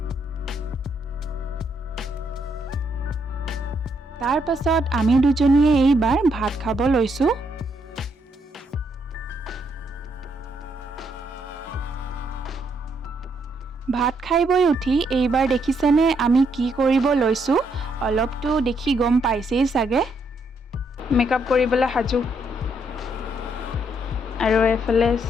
তাৰ পাছত আমি দুজনীয়ে এইবাৰ ভাত খাব লৈছো ভাত খাইবই উঠি এইবাৰ দেখিছেনে আমি কি কৰিব লৈছো অলপটো দেখি গম পাইছেই সাগে মেকআপ কৰিবলৈ হাজু আৰু এফালে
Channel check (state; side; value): normal; both; correlation 0.75